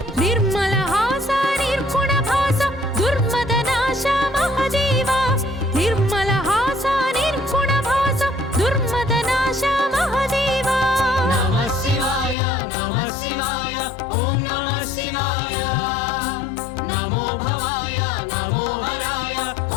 निर्मल हास निर्गुण भास दुर्मदनाश महादेवा निर्मल हास निर्गुण भास दुर्मदनाश महादेवा नमः शिवाय ॐ नमः शिवाय नमो भवाय नमो हराय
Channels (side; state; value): right; drops out; at 12.4 s